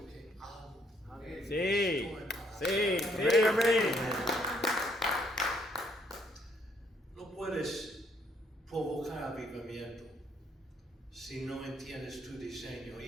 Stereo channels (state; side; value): normal; both; correlation 0.68